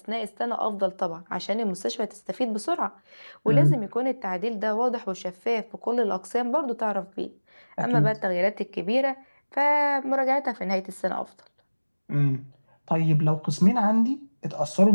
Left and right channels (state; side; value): inverted; both; correlation -1.00